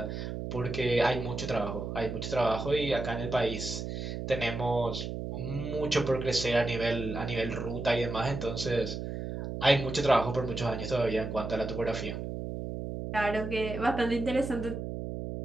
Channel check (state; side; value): noise; right; hum, 5 dB below the sound